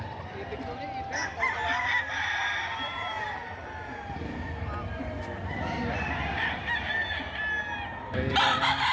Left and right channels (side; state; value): both; identical; correlation 1.00